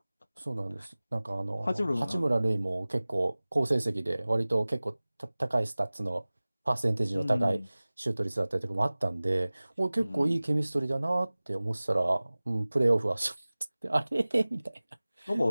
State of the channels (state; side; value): inverted; both; correlation -0.99